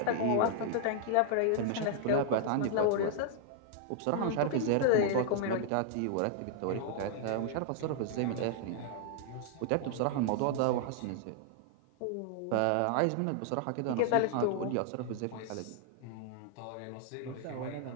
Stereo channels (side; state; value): both; different; correlation -0.01